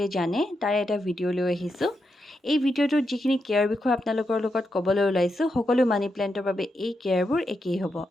জানে তাৰ এটা ভিডিও লৈ আহিছো। এই ভিডিওটোত যিখিনি কেয়াৰ বিষয় আপোনালোকৰ লগত ক'বলৈ ওলাইছো সকলো মানি প্লান্টৰ বাবে এই কেয়াৰবোৰ একেই হ'ব।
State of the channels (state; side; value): normal; both; correlation 0.85